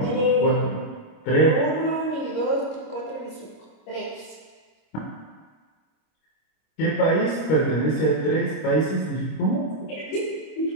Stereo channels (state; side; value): late; right; 25 ms